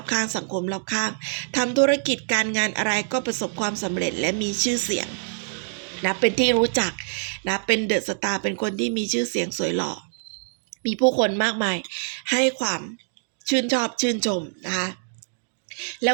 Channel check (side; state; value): left; silent; digital silence